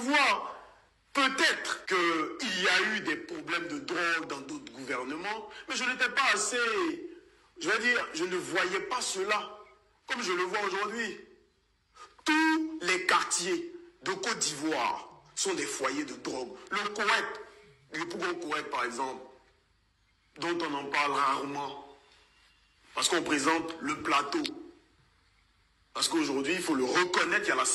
Peut-être qu'il y a eu des problèmes de drogue dans d'autres gouvernements, mais je n'étais pas assez... Je vais dire, je ne voyais pas cela comme je le vois aujourd'hui. Tous les quartiers de Côte d'Ivoire sont des foyers de drogue. Le Koweït, le Pougon Koweït par exemple, dont on en parle rarement, parce qu'on présente le plateau. Parce qu'aujourd'hui, il faut le reconnaître, il y a la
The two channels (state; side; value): identical; both; correlation 1.00